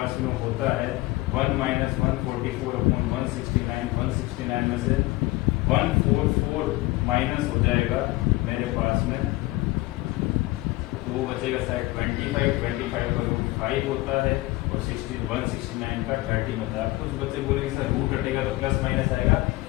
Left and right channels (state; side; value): quieter; right; 19.7 dB